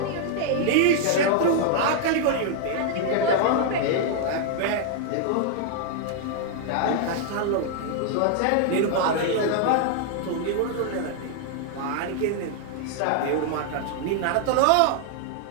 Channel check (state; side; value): different; both; correlation 0.00